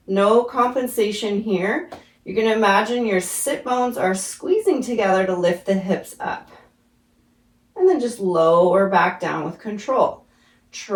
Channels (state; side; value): identical; both; correlation 1.00